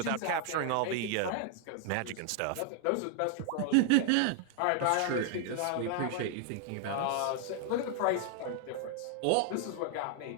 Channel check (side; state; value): both; different; correlation 0.00